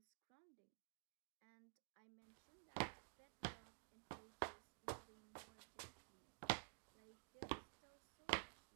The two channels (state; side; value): quieter; left; 40.0 dB